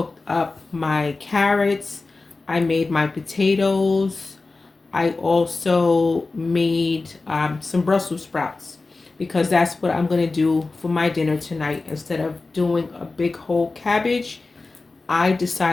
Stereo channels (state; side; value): quieter; right; 3.6 dB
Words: up my carrots, I made my potatoes. I also made some Brussels sprouts because that's what I'm going to do for my dinner tonight. Instead of doing a big whole cabbage, I